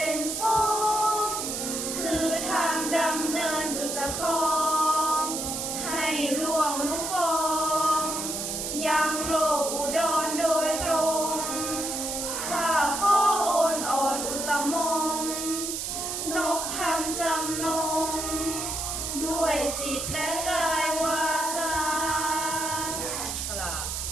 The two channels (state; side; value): noise; right; hiss, 3 dB below the sound